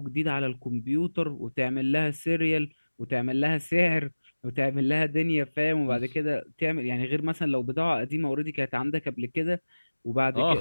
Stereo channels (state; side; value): inverted; both; correlation -1.00